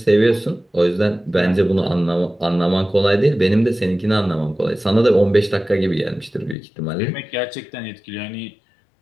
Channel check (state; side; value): drops out; right; at 6.6 s